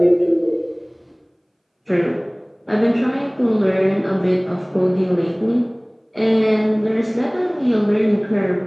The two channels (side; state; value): both; identical; correlation 1.00